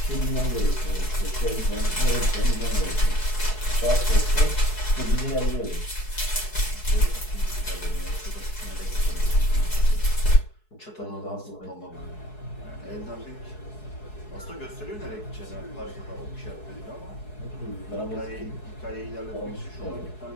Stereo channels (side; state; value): right; late; 4.7 ms